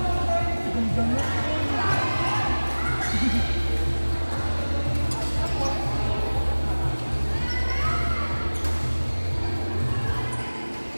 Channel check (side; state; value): both; inverted; correlation -1.00